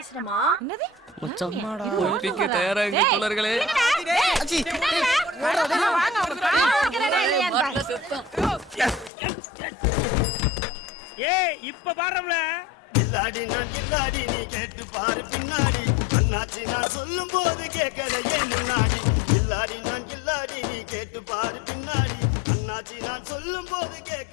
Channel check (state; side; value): drops out; right; at 9.1 s